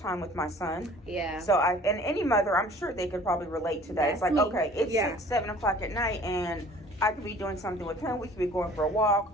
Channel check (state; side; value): normal; both; correlation 0.50